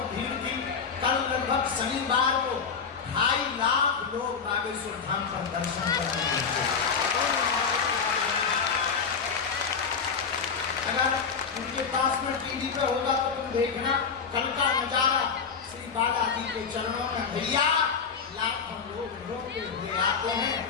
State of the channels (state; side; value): quieter; right; 5.9 dB